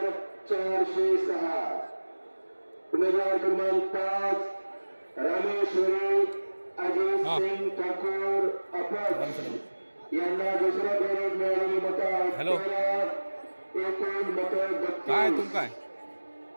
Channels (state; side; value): inverted; both; correlation -1.00